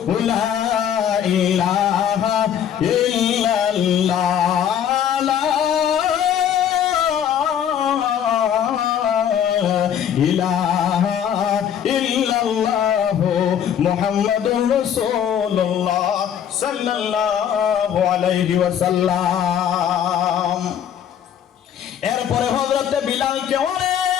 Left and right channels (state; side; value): quieter; right; 9.2 dB